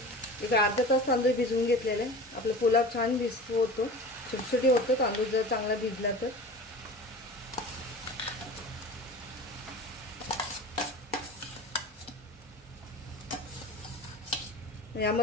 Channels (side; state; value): both; normal; correlation 0.36